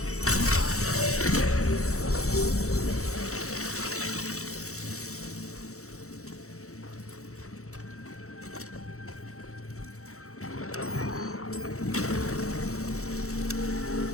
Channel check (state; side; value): late; right; 0.64 ms